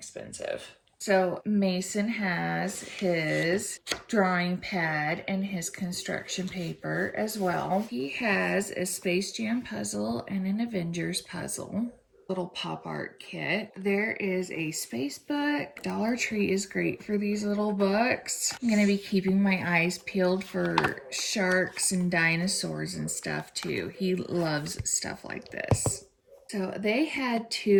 So Mason has his drawing pad and his construction paper as well. He has a Space Jam puzzle and an Avengers puzzle. Little pop art kit. There is a space book. Dollar Tree is great for these little books. I'm gonna be keeping my eyes peeled for sharks and dinosaurs and stuff too. He loves stuff like this. So they had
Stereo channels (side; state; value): both; identical; correlation 1.00